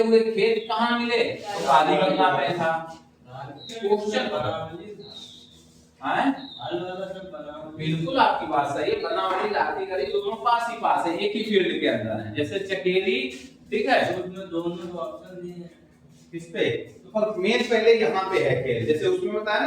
हुए खेत कहाँ मिले, तो काली गंगा में था। क्वेश्चन बिल्कुल आपकी बात सही है, बनावली राखी गढ़ी दोनों पास ही पास है, एक ही फील्ड के अंदर है। जैसे चकेरी, ठीक है, उसमें दोनों ऑप्शन दिए हैं। किस पे? तो मेन पहले यहाँ पे है खेल, जैसे उसमें बताया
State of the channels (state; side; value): identical; both; correlation 1.00